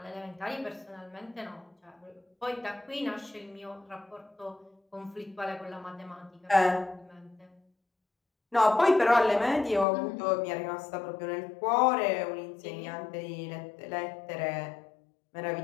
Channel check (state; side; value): drops out; right; at 9.9 s